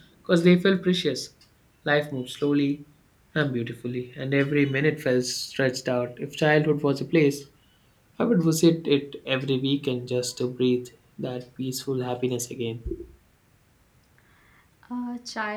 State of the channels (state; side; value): identical; both; correlation 1.00